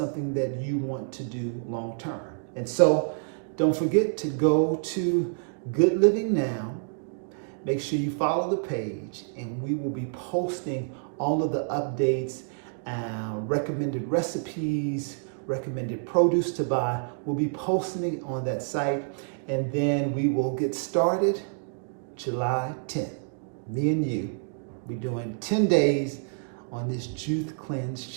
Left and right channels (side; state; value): left; silent; digital silence